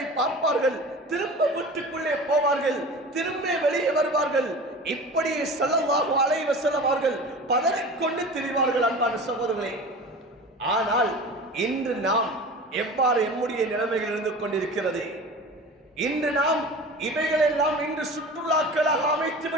பார்ப்பார்கள், திரும்ப வீட்டுக்குள்ளே போவார்கள், திரும்ப வெளியே வருவார்கள். இப்படி ஸல்லல்லாஹு அலைஹி வஸல்லம் அவர்கள் பதறிக்கொண்டு திரிவார்கள். அன்பான சகோதரர்களே, ஆனால் இன்று நாம் எவ்வாறு எம்முடைய நிலைமைகள் இருந்து கொண்டிருக்கிறது? இன்று நாம் இவைகளெல்லாம் இன்று சுற்றுலாக்களாக அமைத்து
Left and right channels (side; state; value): both; normal; correlation 0.36